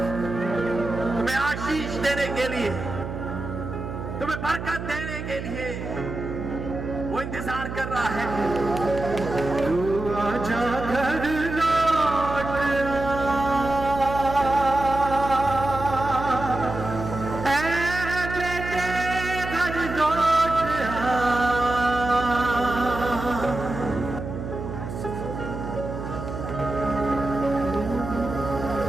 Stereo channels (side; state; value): right; noise; hum, 7 dB below the sound